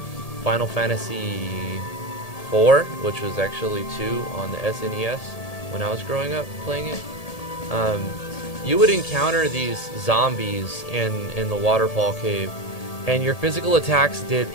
Final Fantasy IV, which was actually 2 on the SNES when I was growing up playing it, you would encounter these zombies in the waterfall cave, and your physical attacks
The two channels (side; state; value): right; late; 1.8 ms